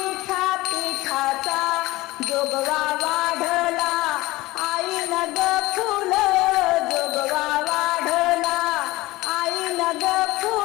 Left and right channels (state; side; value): quieter; right; 19.5 dB